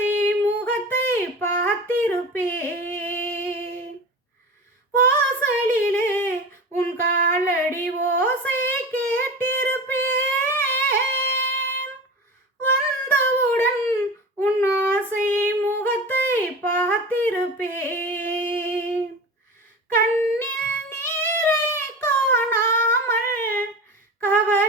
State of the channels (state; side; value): normal; both; correlation 0.31